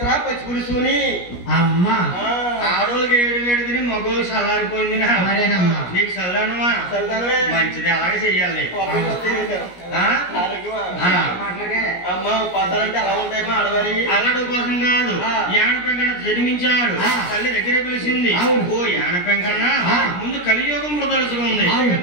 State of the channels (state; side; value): late; right; 17 ms